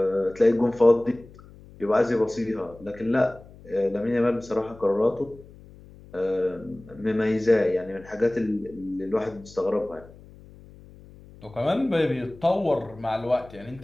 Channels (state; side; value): noise; left; hum, 21 dB below the sound